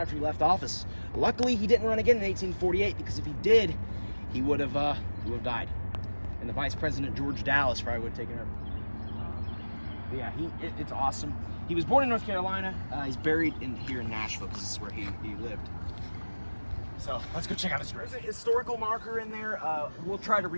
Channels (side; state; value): both; inverted; correlation -1.00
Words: he left office. Luckily, he didn't run again in 1848, because if he did, he would have died. And the vice president, George Dallas, probably would have taken over. But yeah, it's awesome. He was born in North Carolina. He's buried here in Nashville, because this is where he lived. So let's go check out his grave. There's a historical marker in there. We'll try to